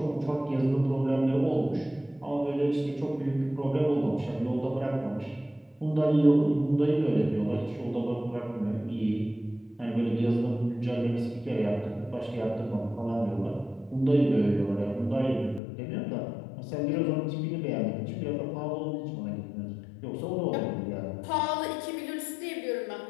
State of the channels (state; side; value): drops out; right; at 15.6 s